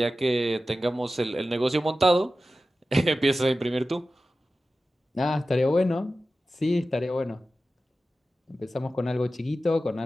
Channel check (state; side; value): normal; both; correlation 0.94